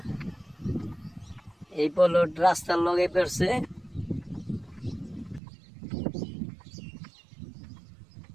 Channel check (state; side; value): drops out; left; at 5.4 s